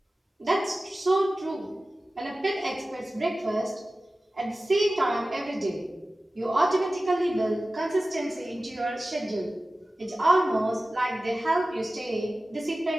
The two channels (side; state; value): both; normal; correlation 0.96